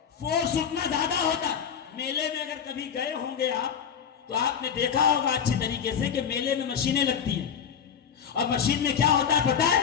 فورس اتنا زیادہ ہوتا۔ میلے میں اگر کبھی گئے ہوں گے آپ، تو آپ نے دیکھا ہوگا اچھی طریقے سے کہ میلے میں مشینیں لگتی ہیں، اور مشین میں کیا ہوتا ہے پتہ ہے؟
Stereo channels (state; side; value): quieter; right; 7.6 dB